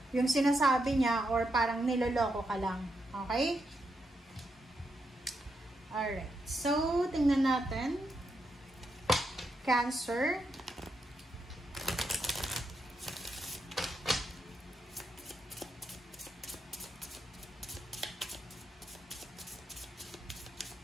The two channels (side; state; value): both; normal; correlation 0.82